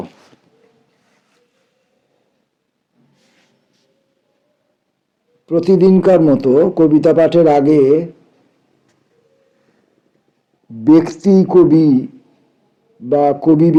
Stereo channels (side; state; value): both; identical; correlation 1.00